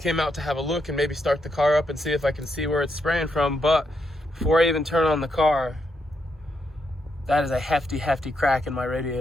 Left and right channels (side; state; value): both; normal; correlation 0.80